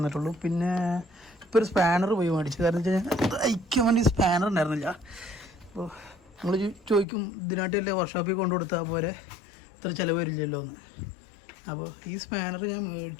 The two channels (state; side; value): drops out; right; at 7.1 s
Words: പിന്നെ ഇപ്പോൾ ഒരു സ്പാനർ പോയി മേടിച്ചു. കാരണം വെച്ചാൽ അയക്കാൻ വേണ്ടി സ്പാനർ ഉണ്ടായിരുന്നില്ല. അപ്പോൾ നമ്മൾ ചോദിക്കും ഇതിനായിട്ടല്ലേ വർക്ക്ഷോപ്പിൽ കൊണ്ടു കൊടുത്താൽ പോലെ ഇത്ര ചിലവ് വരില്ലല്ലോ എന്ന്. അപ്പോൾ ഈ സ്പാനർ ഞാൻ